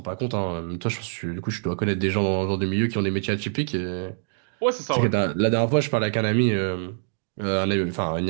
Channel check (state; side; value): silent; left; digital silence